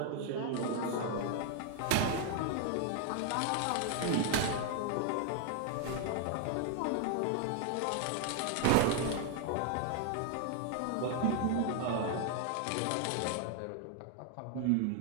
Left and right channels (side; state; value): both; different; correlation 0.00